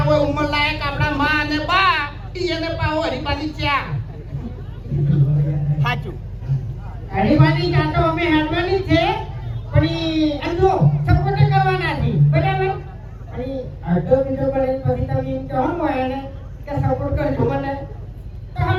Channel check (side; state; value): both; identical; correlation 1.00